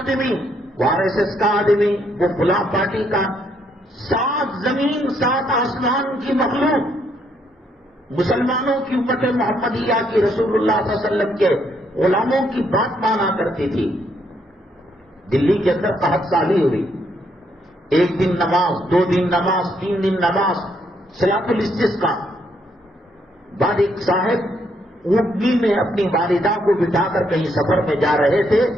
وہ آر ایس ایس کا آدمی، وہ فلاں پارٹی کا۔ 7 زمین 7 آسمان کی مخلوق مسلمانوں کی امت محمدیہ کی، رسول اللہ صلی اللہ علیہ وسلم کے غلاموں کی بات مانا کرتی تھی۔ دلی کے اندر قحط سالی ہوئی، 1 دن نماز، 2 دن نماز، 3 دن نماز، صلاۃ الاستسقاء۔ بعد ایک صاحب اونٹنی میں اپنی والدہ کو بٹھا کر کہیں سفر میں جا رہے تھے،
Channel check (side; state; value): both; normal; correlation 0.73